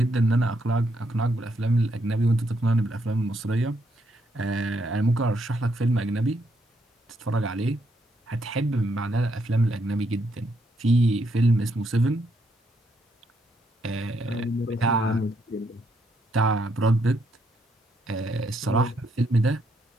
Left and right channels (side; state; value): both; normal; correlation 0.76